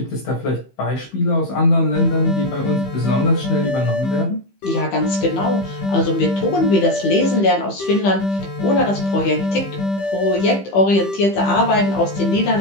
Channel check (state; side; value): late; right; 15 ms